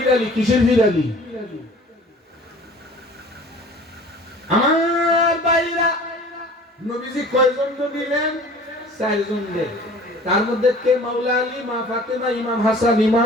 কিসের ফিরালি? আমার ভাইরা, নবীজি কয়জন দিলেন? 4 জন দিলেন। তার মধ্যে কে? মাওলা আলী, মা ফাতেমা, ইমাম হাসান,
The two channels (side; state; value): both; normal; correlation 0.46